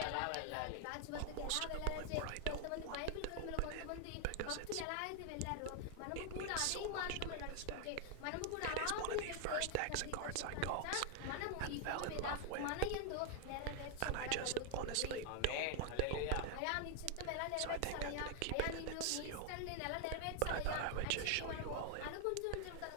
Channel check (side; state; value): both; different; correlation 0.00